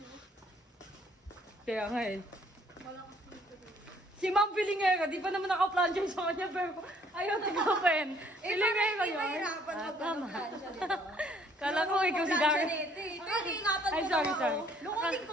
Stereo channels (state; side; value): normal; both; correlation 0.62